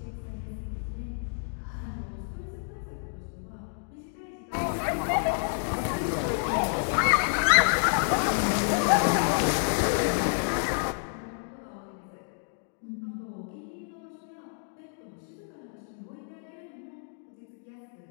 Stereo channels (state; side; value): silent; right; digital silence